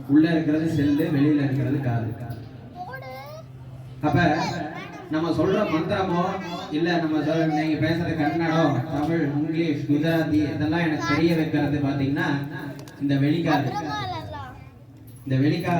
உள்ள இருக்கிறது செல்லு, வெளியில இருக்கிறது காது. அப்ப நம்ம சொல்ற மந்திரமோ இல்ல நம்ம நீங்க பேசுற கன்னடம், தமிழ், இங்கிலீஷ், குஜராத்தி இதெல்லாம் எனக்கு தெரிய வைக்கிறது பாத்தீங்கன்னா இந்த வெளிக்காது. இந்த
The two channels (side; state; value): both; identical; correlation 1.00